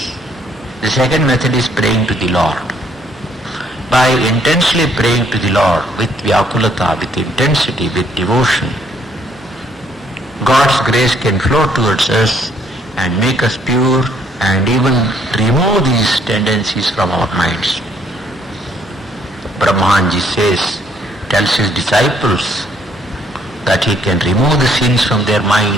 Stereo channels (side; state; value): both; normal; correlation 0.67